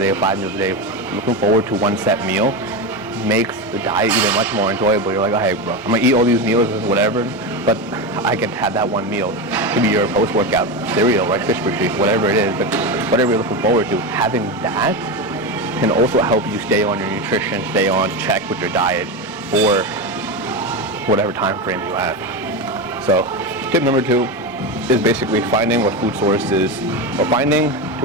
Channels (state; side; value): normal; both; correlation 0.17